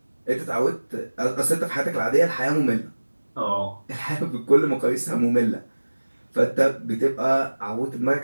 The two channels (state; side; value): inverted; both; correlation -1.00